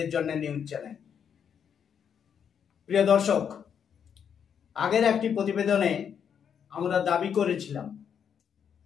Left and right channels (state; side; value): quieter; right; 7.7 dB